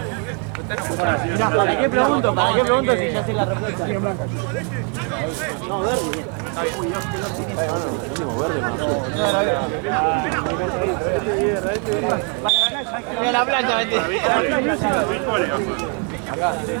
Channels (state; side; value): quieter; left; 36.3 dB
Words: ¿Para qué pregunto? ¿Para qué pregunto si ya sé la respuesta? No, verde. Mira la plancha, vete. Acá.